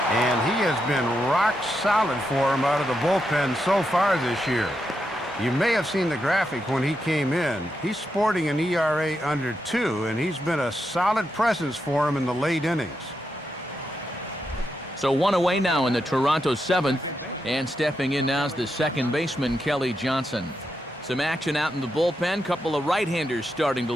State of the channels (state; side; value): normal; both; correlation 0.84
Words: he has been rock solid for him out of the bullpen so far this year. You may have seen the graphic when he came in. He's sporting an ERA under 2, and he's been a solid presence for him in the late innings. So 1 away now in the Toronto 7th, and stepping in now is the second baseman, Kelly Johnson. Some action out in the bullpen, couple of right-handers starting to